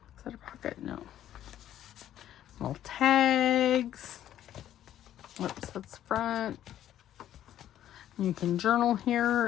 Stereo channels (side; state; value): right; quieter; 11.6 dB